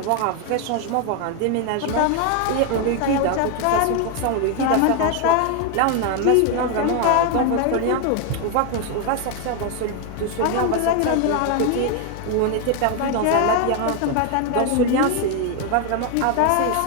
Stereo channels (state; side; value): different; both; correlation 0.01